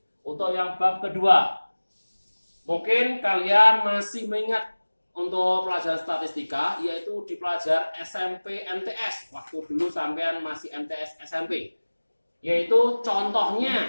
Untuk yang bab kedua. Mungkin kalian masih mengingat untuk pelajaran statistika, yaitu di pelajaran SMP MTS. Waktu dulu sampean masih MTS SMP. Yaitu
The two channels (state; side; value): inverted; both; correlation -1.00